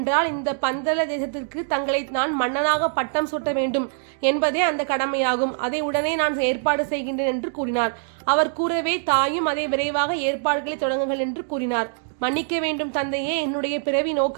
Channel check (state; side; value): silent; left; digital silence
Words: இந்த பந்தல தேசத்திற்கு தங்களை நான் மன்னனாக பட்டம் சூட்ட வேண்டும் என்பதே அந்த கடமையாகும். அதை உடனே நான் ஏற்பாடு செய்கின்றேன் என்று கூறினார். அவர் கூறவே தாயும் அதை விரைவாக ஏற்பாடுகளை தொடங்குங்கள் என்று கூறினார். மன்னிக்க வேண்டும் தந்தையே, என்னுடைய பிறவி